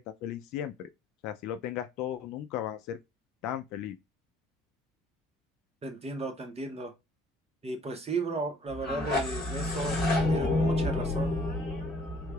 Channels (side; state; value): both; normal; correlation 0.57